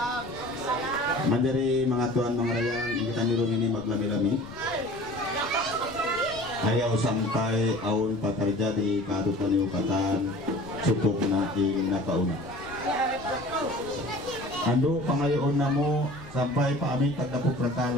Manjari mga tuan mga rayang kita nirong ini maglami-lami. Ayaw sampai aun patarja di kadutan upatan cukup na ing nakauna. Ando pangayoon na mo sampai paaming pagdapo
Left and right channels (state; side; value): noise; left; rumble, 19 dB below the sound